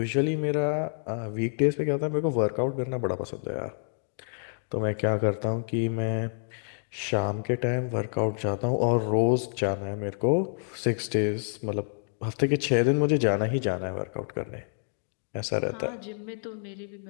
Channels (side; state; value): right; silent; digital silence